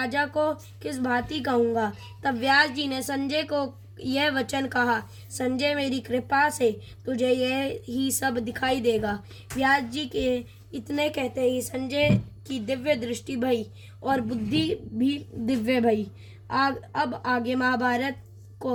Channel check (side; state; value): both; identical; correlation 1.00